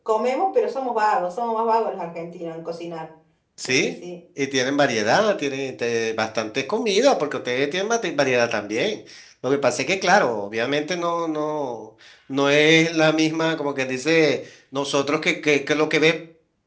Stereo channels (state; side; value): identical; both; correlation 1.00